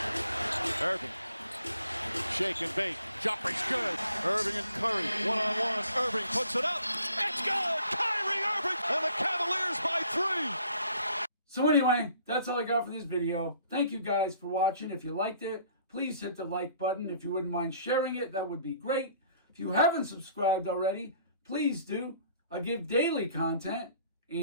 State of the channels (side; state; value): both; inverted; correlation -0.57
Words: Irving. Shake and bake. Jumper's good. Irving and Curry. One-on-one. Irving puts it up. It's good. Kyrie Irving. And the Cavaliers by 3. So anyway, that's all I got for this video. Thank you guys for watching. If you liked it, please hit the like button. If you wouldn't mind sharing it, that would be great. If you haven't subscribed already, please do. I give daily content.